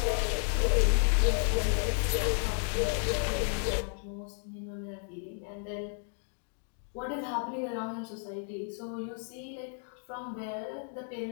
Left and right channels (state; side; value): silent; right; 56 dB below the other